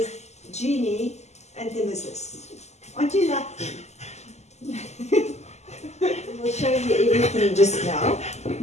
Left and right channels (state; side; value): late; right; 0.33 ms